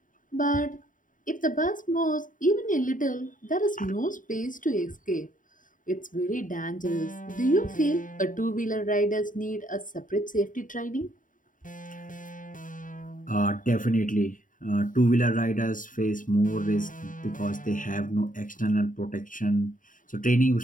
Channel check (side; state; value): right; late; 0.38 ms